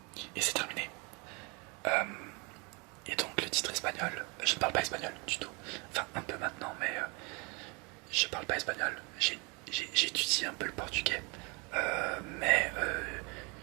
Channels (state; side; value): quieter; left; 30.5 dB